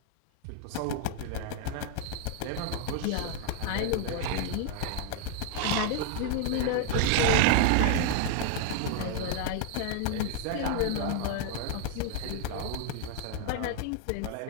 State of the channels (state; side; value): different; both; correlation 0.00